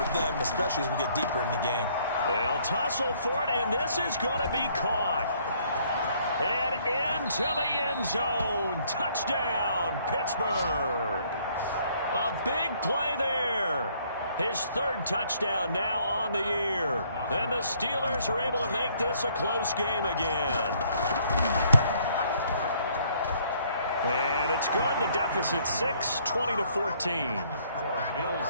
them, especially as we get deeper in the game. They'll tussle for it, and this is going to be caught. And into the end zone. Touchdown, Pittsburgh. A big play there. His 3rd touchdown now on the year. And the Steelers are able to make this a close game again. And it's good. The deficit 6, 20-14.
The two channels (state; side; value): inverted; both; correlation -0.64